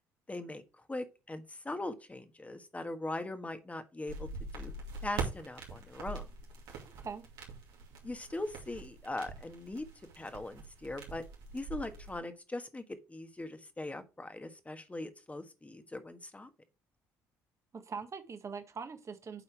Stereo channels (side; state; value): both; normal; correlation 0.72